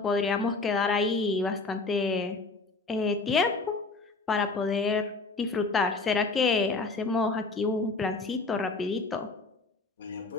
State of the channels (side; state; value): right; quieter; 3.7 dB